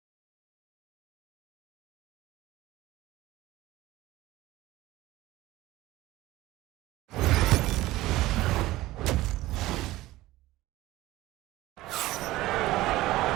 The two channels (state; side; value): quieter; left; 17.3 dB